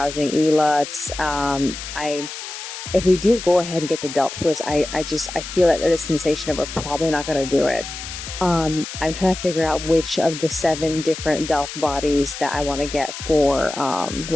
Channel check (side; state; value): left; noise; hiss, 9 dB below the sound